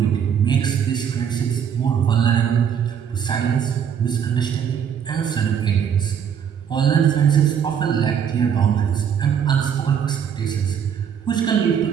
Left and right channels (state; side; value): quieter; left; 8.0 dB